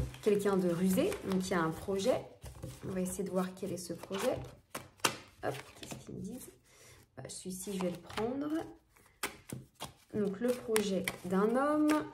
quelqu'un de rusé, donc il y a un projet. On va essayer de voir quel est ce projet. Hop, qu'est-ce qu'ils me disent? Celui-ci, je vais le prendre. Donc le projet d'un homme,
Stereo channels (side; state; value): both; identical; correlation 1.00